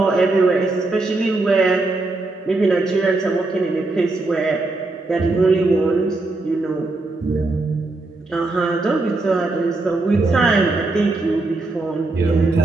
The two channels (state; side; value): quieter; left; 3.2 dB